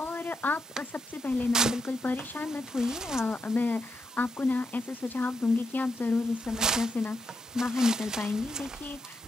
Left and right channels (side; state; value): both; normal; correlation 0.82